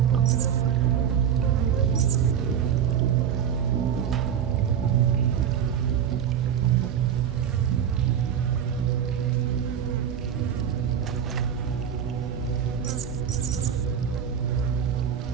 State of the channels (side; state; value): left; quieter; 8.6 dB